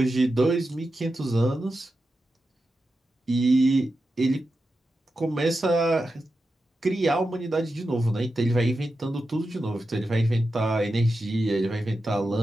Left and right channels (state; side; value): normal; both; correlation 0.90